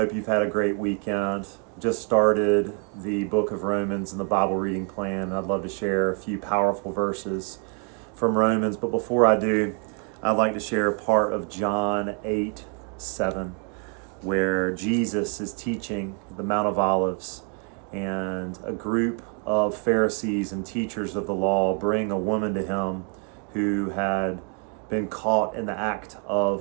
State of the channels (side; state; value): left; quieter; 39.9 dB